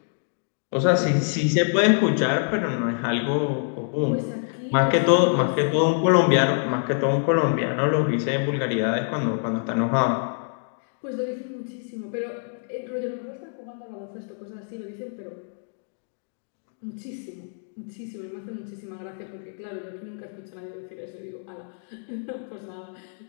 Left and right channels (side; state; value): right; silent; digital silence